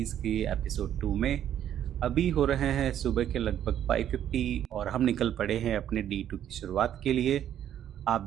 के एपिसोड 2 में। अभी हो रहे हैं सुबह के लगभग 5:50 और हम निकल पड़े हैं अपने D2 की शुरुआत के लिए। आप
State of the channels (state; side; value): quieter; left; 10.5 dB